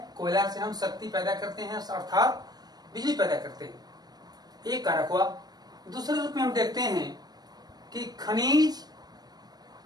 कोयला से हम शक्ति पैदा करते हैं अर्थात बिजली पैदा करते हैं, एक कारक हुआ। दूसरे रूप में हम देखते हैं कि खनिज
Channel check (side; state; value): left; late; 0.19 ms